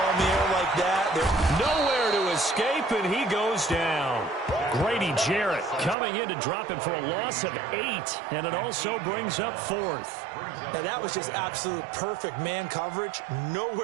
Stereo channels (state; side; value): drops out; left; at 6.0 s